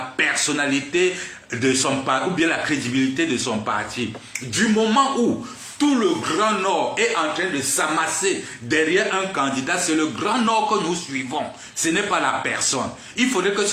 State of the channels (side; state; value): both; identical; correlation 1.00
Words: personnalité de son parti, ou bien la crédibilité de son parti. Du moment où tout le Grand Nord est en train de s'amasser derrière un candidat, c'est le Grand Nord que nous suivons. Ce n'est pas la personne. Il faudrait que